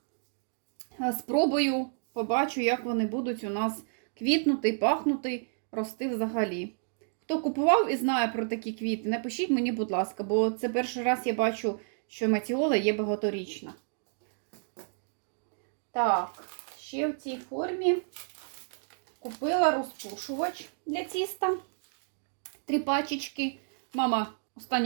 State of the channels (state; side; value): silent; left; digital silence